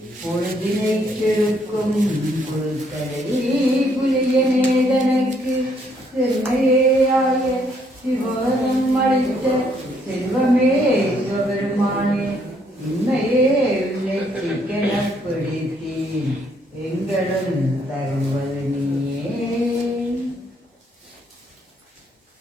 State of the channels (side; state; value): both; normal; correlation 0.69